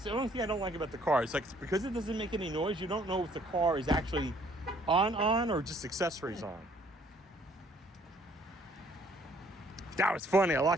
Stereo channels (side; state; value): both; normal; correlation 0.61